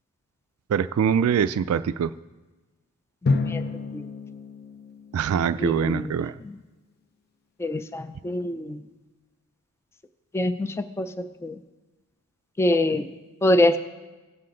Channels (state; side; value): normal; both; correlation 0.55